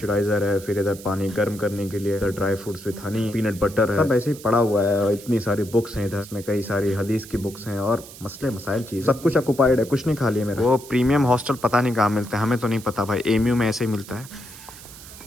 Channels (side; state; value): right; noise; hiss, 17 dB below the sound